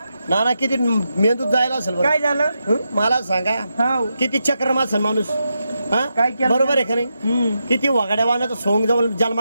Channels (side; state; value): both; inverted; correlation -0.86